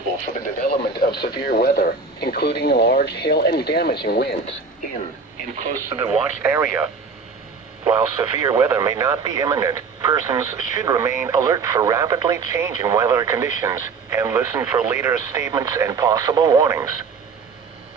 for the development of severe weather, including large hail and damaging winds in and close to the watched area. While severe weather may not be imminent, persons should remain alert for rapidly changing weather conditions and listen for later statements and possible warnings.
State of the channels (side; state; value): left; quieter; 4.8 dB